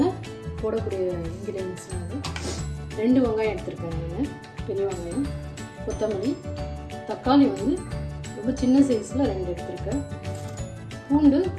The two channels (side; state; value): both; identical; correlation 1.00